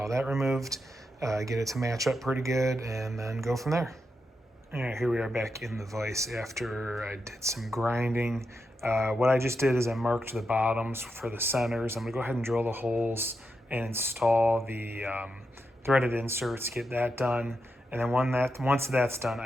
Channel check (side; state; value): both; normal; correlation 0.85